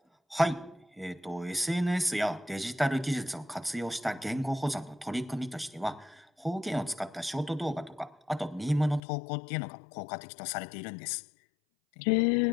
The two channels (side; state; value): right; drops out; at 9.0 s